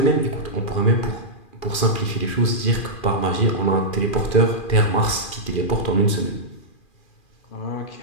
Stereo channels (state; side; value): late; right; 2.4 ms